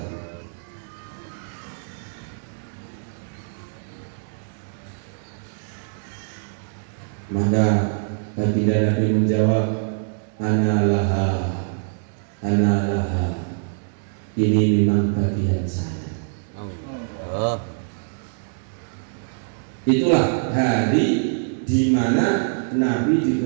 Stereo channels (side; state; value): left; silent; digital silence